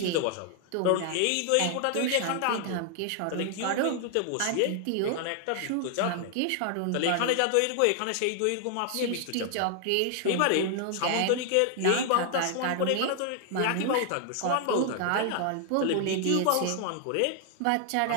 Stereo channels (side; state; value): both; different; correlation 0.00